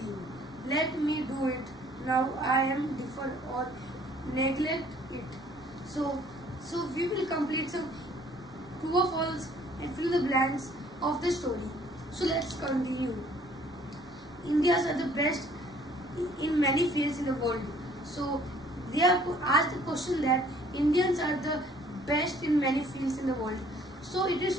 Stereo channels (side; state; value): both; normal; correlation 0.58